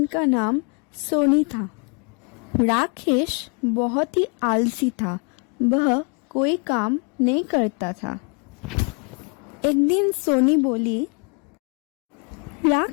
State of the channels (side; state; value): right; quieter; 37.1 dB